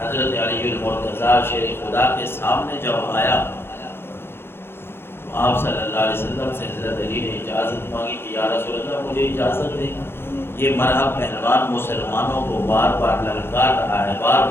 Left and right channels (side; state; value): right; late; 0.11 ms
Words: علی المرتضیٰ شیر خدا کے سامنے جب آیا تو آپ صلی اللہ علیہ وسلم سے حضرت علی نے اجازت مانگی کہ یا رسول اللہ مجھے اجازت دیں، یہ مرحب پہلوان مسلمانوں کو بار بار للکار رہا ہے، بار